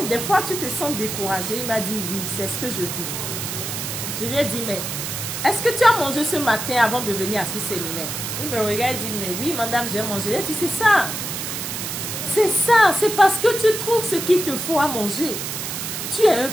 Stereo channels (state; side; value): noise; right; hiss, 5 dB below the sound